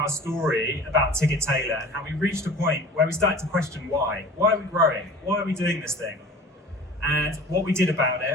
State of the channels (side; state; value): both; normal; correlation 0.41